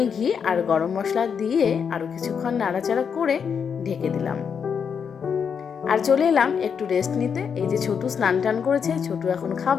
ঘি আর গরম মশলা দিয়ে আরও কিছুক্ষণ নাড়াচাড়া করে ঢেকে দিলাম। আর চলে এলাম একটু রেস্ট নিতে। এই যে ছোটু স্নান টান করেছে, ছোটু এখন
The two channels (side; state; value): right; quieter; 6.8 dB